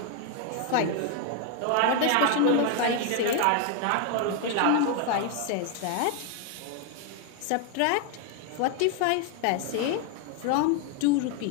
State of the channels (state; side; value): different; both; correlation 0.01